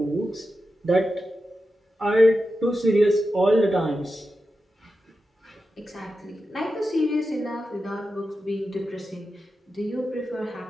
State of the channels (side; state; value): both; normal; correlation 0.90